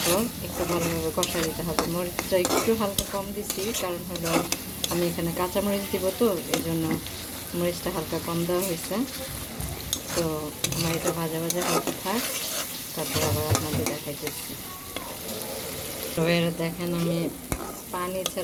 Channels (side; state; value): both; identical; correlation 1.00